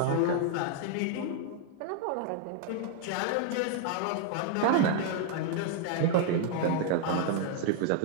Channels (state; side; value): different; both; correlation 0.00